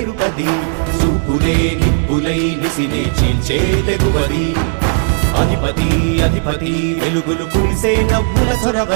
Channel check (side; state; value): left; silent; 70 dB below the other